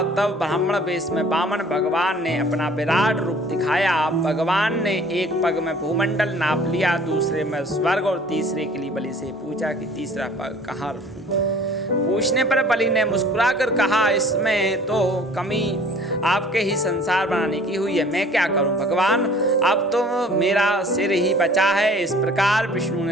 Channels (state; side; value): normal; both; correlation 0.51